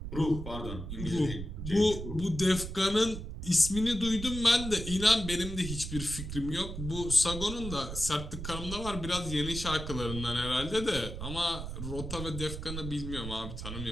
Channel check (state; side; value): noise; right; rumble, 7 dB below the sound